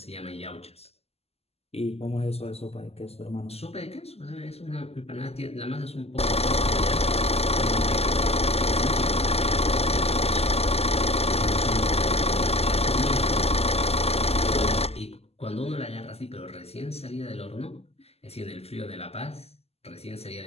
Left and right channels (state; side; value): late; right; 0.29 ms